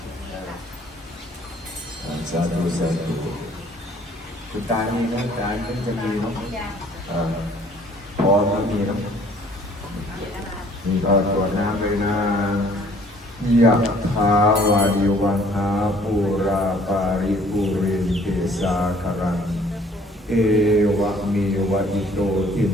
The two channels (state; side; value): normal; both; correlation 0.57